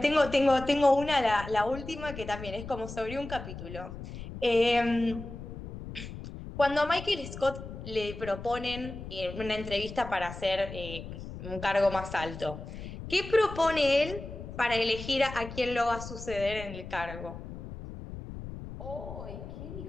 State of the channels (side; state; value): left; noise; rumble, 11 dB below the sound